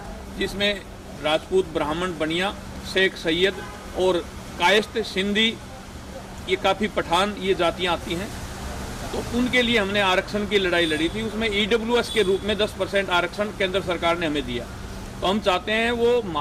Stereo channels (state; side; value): identical; both; correlation 1.00